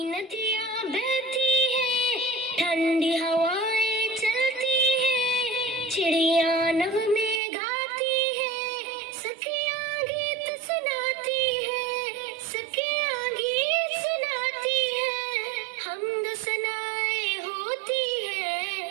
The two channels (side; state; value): left; drops out; at 7.4 s